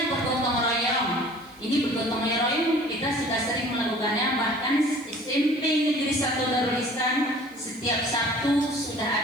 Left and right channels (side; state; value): right; noise; hiss, 28 dB below the sound